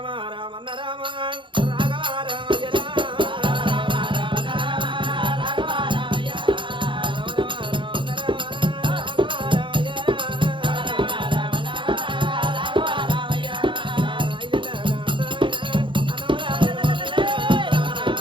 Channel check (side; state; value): left; late; 0.24 ms